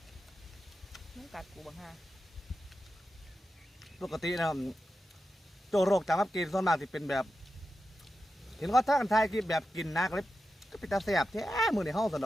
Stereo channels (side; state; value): both; normal; correlation 0.90